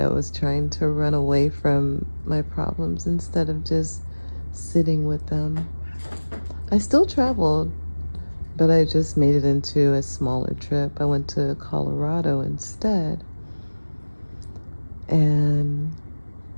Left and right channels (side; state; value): both; inverted; correlation -1.00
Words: was trying to run away from my problems instead of just sitting with them. I still traveled But I just made it into a smaller trip. I went to Colorado instead. And